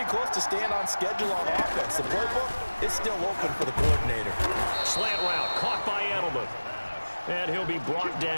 close to staying on schedule on offense. The playbook is still open for the coordinator. Slant route caught by Edelman. And he'll be brought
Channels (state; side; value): inverted; both; correlation -1.00